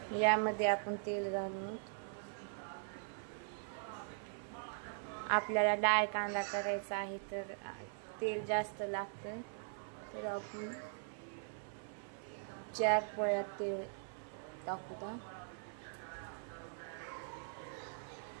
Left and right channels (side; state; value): left; silent; 50 dB below the other